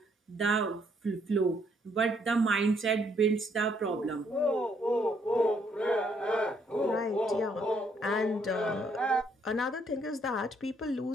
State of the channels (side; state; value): both; normal; correlation 0.70